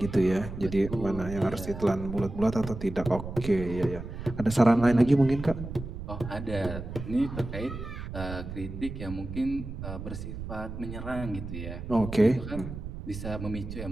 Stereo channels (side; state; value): right; noise; rumble, 9 dB below the sound